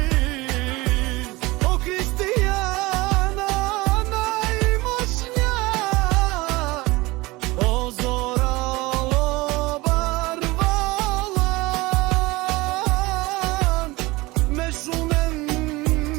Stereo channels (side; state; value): left; quieter; 21.8 dB